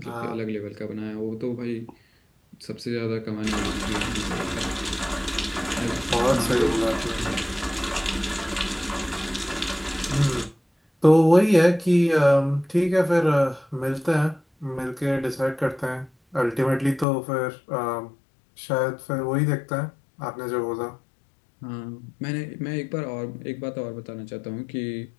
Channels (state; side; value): drops out; right; at 17.1 s